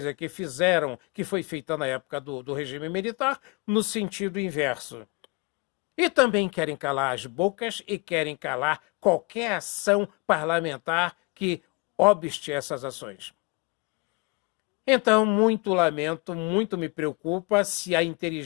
que fizeram, que foi feita na época do regime militar, no sentido inverso. E também querem calar as bocas e querem calar qualquer ação parlamentar que obste essas ações. Então, muito lamento, muito me preocupa se a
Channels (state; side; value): quieter; right; 28.0 dB